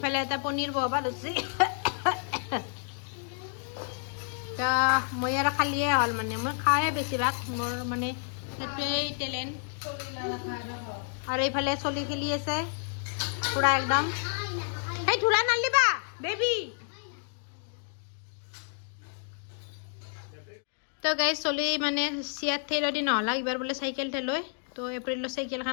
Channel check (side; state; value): right; silent; 58 dB below the other